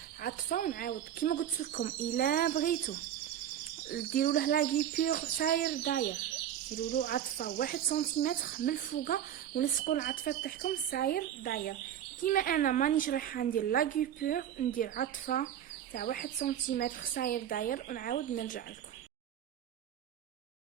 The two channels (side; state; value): left; quieter; 10.3 dB